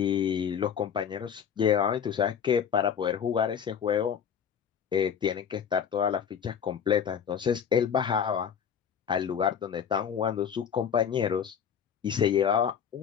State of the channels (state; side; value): quieter; right; 7.9 dB